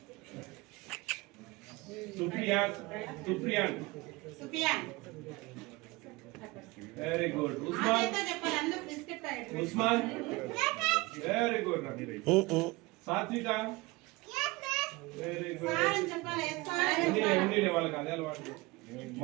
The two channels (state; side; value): quieter; left; 23.0 dB